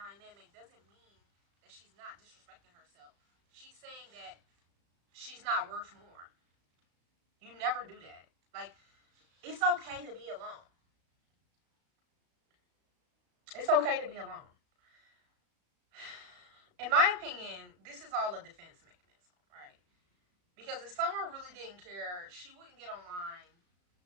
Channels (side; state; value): left; late; 35 ms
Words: doesn't mean that she's not disrespecting herself. She's saying that she's not worth more. You never do that. Like, it's okay to be alone. It's okay to be alone. In my opinion, this is all a defense mechanism, right? Because if Summer really didn't care, she wouldn't get online